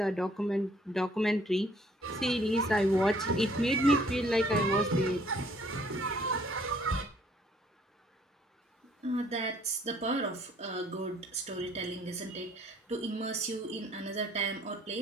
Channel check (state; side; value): normal; both; correlation 0.61